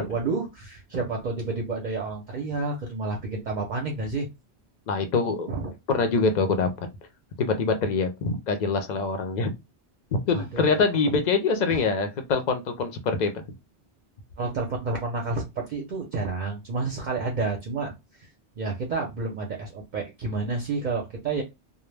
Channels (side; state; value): both; normal; correlation -0.04